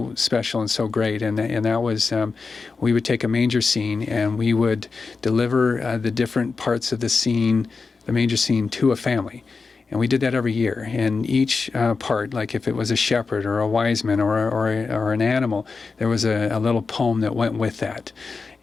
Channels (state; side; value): quieter; right; 4.5 dB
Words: special and so great, and that was we would take a manger scene and we would deliver the different parts of the manger scene, to a family. And we did that every year. And each part, like if it was a shepherd or a wise man or an animal, there was a little poem that went with that.